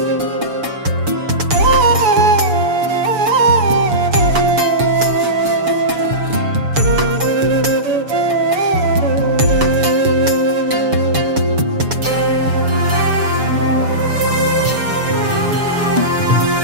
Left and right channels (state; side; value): late; left; 7.0 ms